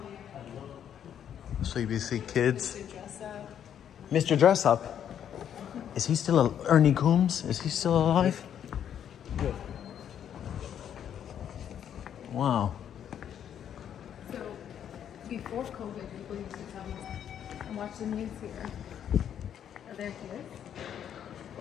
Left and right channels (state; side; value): quieter; right; 9.3 dB